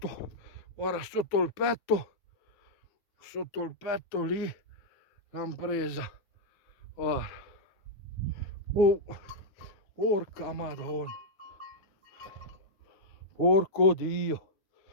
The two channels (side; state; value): right; late; 9.4 ms